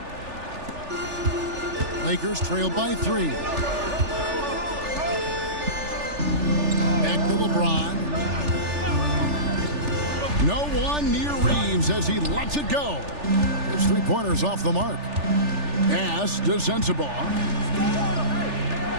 Lakers trail by 3. Back to LeBron. No one near Reeves as he lets it go. His three-pointers off the mark. Pass to Sensabaugh.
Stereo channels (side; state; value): left; late; 3.4 ms